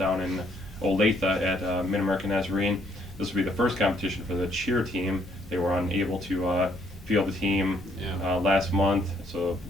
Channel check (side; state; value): both; normal; correlation 0.68